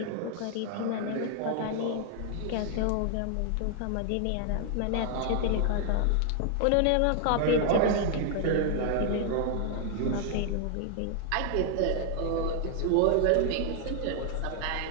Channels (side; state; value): both; different; correlation 0.00